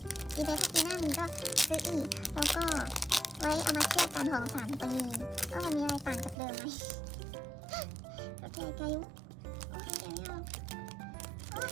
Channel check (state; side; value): drops out; left; at 6.4 s